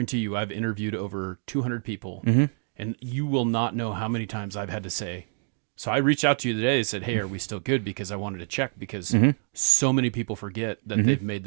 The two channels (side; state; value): left; silent; 60 dB below the other